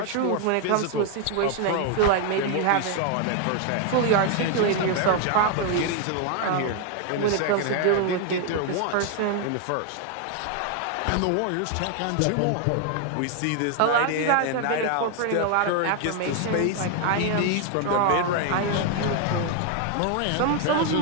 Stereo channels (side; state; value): both; different; correlation 0.01